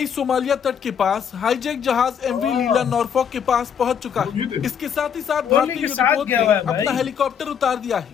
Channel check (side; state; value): right; quieter; 7.8 dB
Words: सोमालिया तट के पास हाईजैक जहाज एमवी लीला नॉरफॉक के पास पहुंच चुका है। इसके साथ ही साथ भारतीय युद्धपोत ने अपना हेलीकॉप्टर उतार दिया